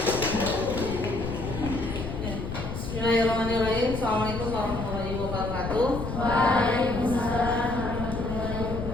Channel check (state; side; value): noise; left; rumble, 6 dB below the sound